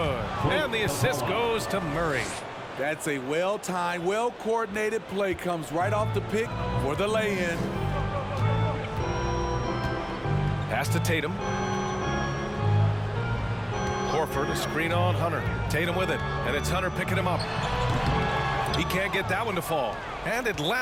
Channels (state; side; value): identical; both; correlation 1.00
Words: And the assist goes to Murray. That's a well-timed, well-coordinated play. Comes right off the pick for the lay-in. Pass to Tatum. Horford, a screen on Hunter. Tatum with it, and it's Hunter picking him up. He can't get that one to fall. And